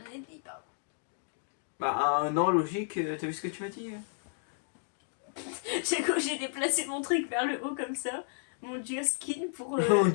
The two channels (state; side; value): silent; right; digital silence